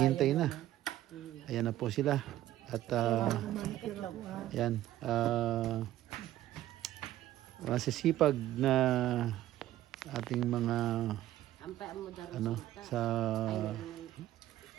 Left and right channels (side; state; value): left; quieter; 13.8 dB